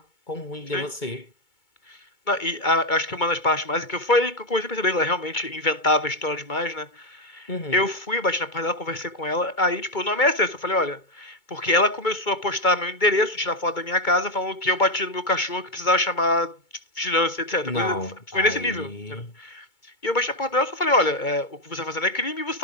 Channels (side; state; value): right; late; 2.2 ms